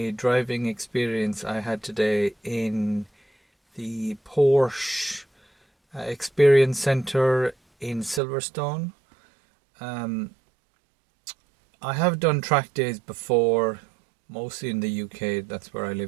driving experience I had today in the Porsche Experience Center in Silverstone. I have done track days before, mostly in the UK, that's where I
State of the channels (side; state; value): left; drops out; at 8.2 s